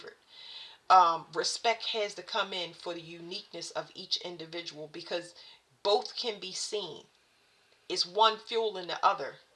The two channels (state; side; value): identical; both; correlation 1.00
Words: Respect has to come in for the uniqueness of each individual, because both can be seen. It's one fueling the other,